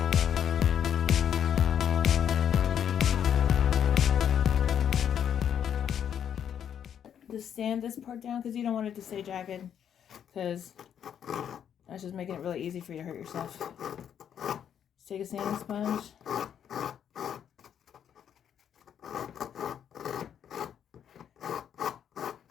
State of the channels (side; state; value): right; quieter; 8.9 dB